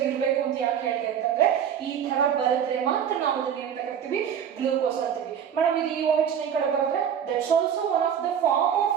ಇರಬೇಕು ಅಂತ ಯಾಕೆ ಹೇಳಿದೆ ಅಂತಂದ್ರೆ, ಈ ತರ ಬರೆದ್ರೆ ಮಾತ್ರ ನಾವು ಅದನ್ನ ಏನಂತ ಕರಿತೀವಿ, ಗ್ಲೂಕೋಸ್ ಅಂತೀವಿ. ಮೇಡಮ್ ಇದು ಈ OH ನ ಕಡೆ ಬರೆದ್ರೆ that's also one of the form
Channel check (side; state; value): left; quieter; 8.5 dB